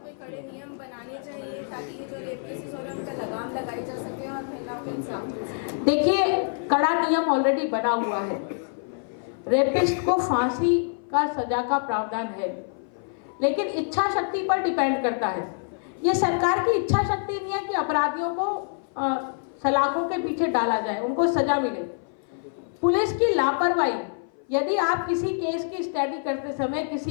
बनाने चाहिए ताकि जो रेप केसेस हो रहे हैं उनका लगाम लगाई जा सके और महिलाओं को इंसाफ मिल सके। देखिए, कड़ा नियम ऑलरेडी बना हुआ है। रेपिस्ट को फांसी का सजा का प्रावधान है, लेकिन इच्छा शक्ति पर डिपेंड करता है। ये सरकार की इच्छा शक्ति नहीं है कि अपराधियों को सलाखों के पीछे डाला जाए, उनको सजा मिले। पुलिस की लापरवाही, यदि आप किसी केस की स्टडी करते समय,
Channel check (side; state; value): right; silent; 57 dB below the other